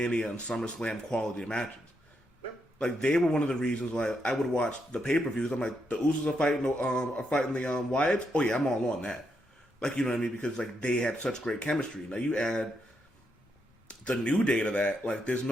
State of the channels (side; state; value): both; normal; correlation 0.80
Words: and SummerSlam quality matches. Yep. Like they were one of the reasons why I would watch the pay-per-views. I'm like the Usos are fighting the Wyatts. Oh yeah, I'm all on that. Like, you know what I mean? Because, like, they had such great chemistry. Now, you add the New Day to that. Like, there's